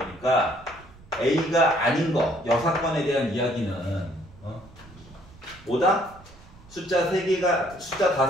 A가 아닌 거, 여사건에 대한 이야기는 뭐다? 숫자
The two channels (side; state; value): right; noise; rumble, 22 dB below the sound